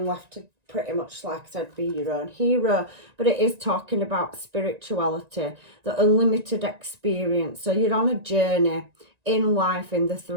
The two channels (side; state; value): left; late; 1.9 ms